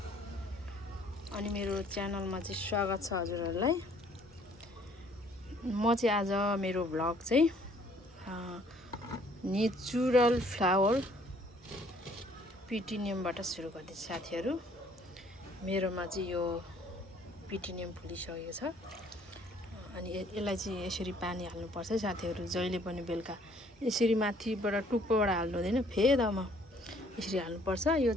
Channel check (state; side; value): normal; both; correlation 0.60